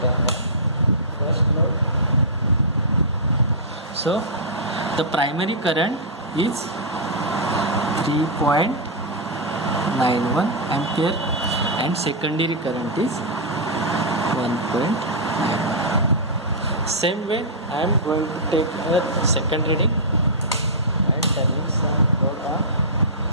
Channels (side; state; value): both; normal; correlation -0.12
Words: turn on first load. So the primary current is 3.91 ampere and secondary current is 1.9. Same way I am going to take a second reading and turning some load on.